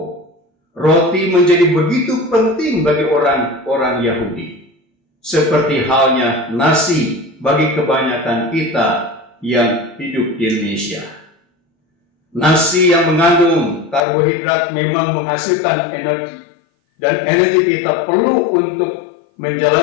Roti menjadi begitu penting bagi orang-orang Yahudi, seperti halnya nasi bagi kebanyakan kita yang hidup di Indonesia. Nasi yang mengandung karbohidrat memang menghasilkan energi, dan energi kita perlu untuk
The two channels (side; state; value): right; drops out; at 14.0 s